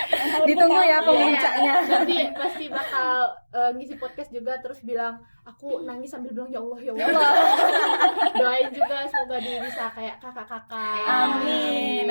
Ditunggu ya Iya. pemuncaknya. Nanti pasti bakal ngisi podcast juga terus bilang aku nangis sambil bilang ya Allah ya Allah. Doain juga semoga dia bisa kayak kakak-kakak. Amin,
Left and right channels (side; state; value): both; inverted; correlation -1.00